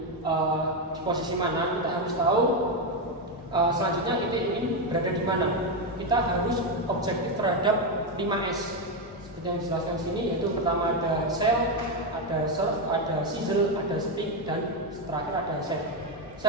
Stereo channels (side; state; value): both; normal; correlation 0.07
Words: di posisi mana, kita harus tahu selanjutnya kita ingin berada di mana. Kita harus objektif terhadap 5S. Seperti yang dijelaskan sini, yaitu pertama ada sell, ada serve, ada sizzle, ada speak, dan terakhir ada save.